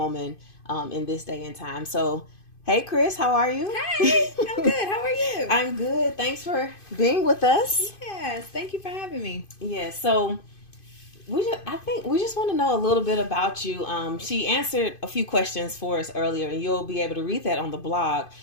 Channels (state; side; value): late; right; 2.5 ms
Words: in this day and time. So, hey, Chris, how are you? Hey, I'm good. How are you? I'm good. Thanks for being with us. Yes, thank you for having me. Yes. So I think we just want to know a little bit about you. She answered a few questions for us earlier, and you'll be able to read that on the blog.